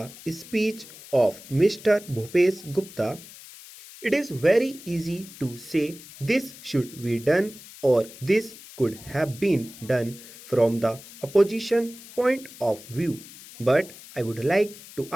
speech of Mr. Bhupesh Gupta. It is very easy to say this should be done or this could have been done from the opposition point of view. But I would like to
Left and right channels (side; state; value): left; noise; hiss, 18 dB below the sound